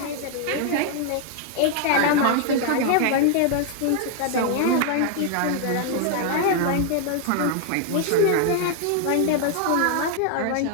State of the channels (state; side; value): different; both; correlation 0.00